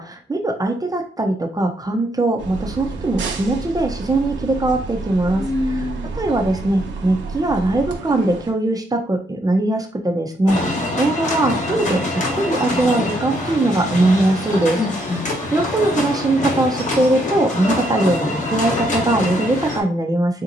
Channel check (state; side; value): normal; both; correlation 0.74